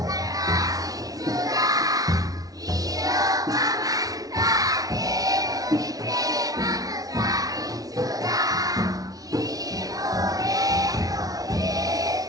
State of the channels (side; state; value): left; late; 0.18 ms